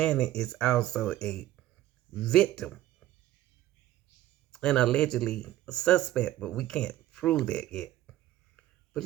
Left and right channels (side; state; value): left; quieter; 14.3 dB